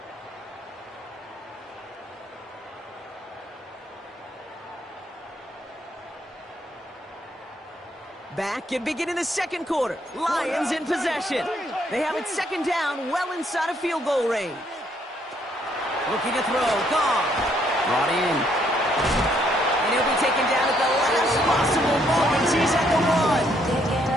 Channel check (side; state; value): both; normal; correlation 0.70